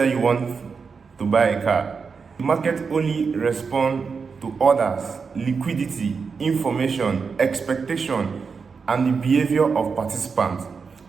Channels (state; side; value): quieter; left; 5.3 dB